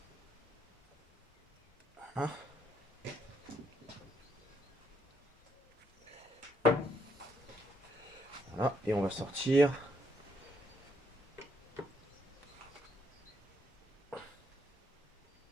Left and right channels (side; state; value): both; normal; correlation 0.74